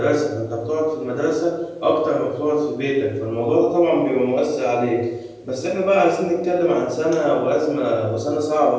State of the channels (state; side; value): identical; both; correlation 1.00